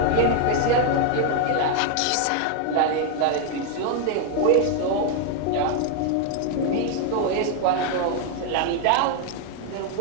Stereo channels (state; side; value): different; both; correlation 0.00